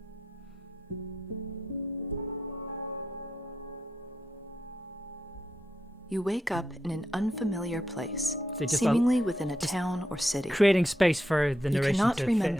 You wake up in an unfamiliar place, So just seemingly within a town or city. Creating space for the You narration cannot to fit in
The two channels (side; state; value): both; normal; correlation 0.83